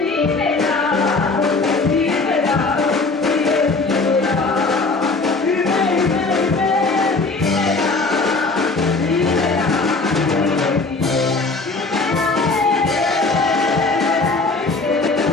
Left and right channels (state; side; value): quieter; right; 3.6 dB